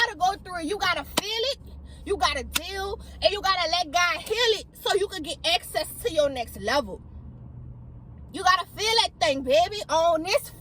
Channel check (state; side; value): identical; both; correlation 1.00